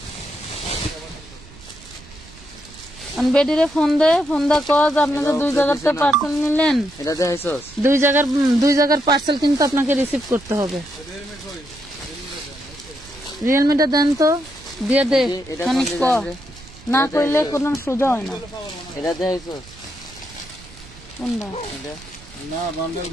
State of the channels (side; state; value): right; noise; rumble, 21 dB below the sound